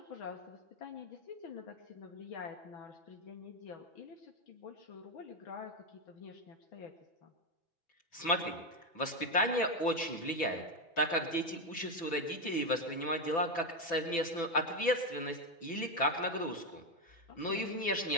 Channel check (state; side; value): late; right; 6.0 ms